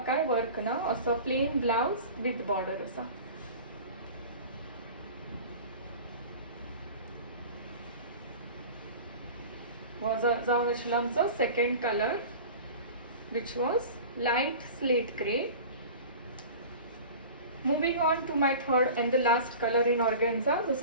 काय वर्क ना, असो प्लेन ब्लाउज विथ बॉर्डर आसा. हो जावन आशिल्लो आमचो second colour which was light slate grey. Moving on to my third and the last colour in organza जो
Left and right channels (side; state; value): both; inverted; correlation -0.38